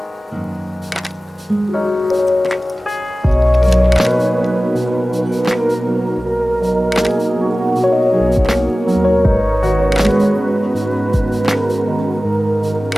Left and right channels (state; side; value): normal; both; correlation 0.97